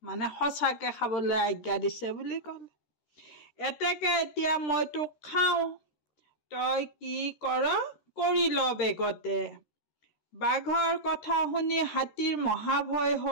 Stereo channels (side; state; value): right; late; 13 ms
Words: সঁচাকে খাবলৈ আজ্ঞা দিছে বুলি ক'লে। এতেকে এতিয়া মই তোক খাওঁ, তই কি কৰ কৰি ল বেগতে। বাঘৰ কথা শুনি হাতীৰ মহাভয়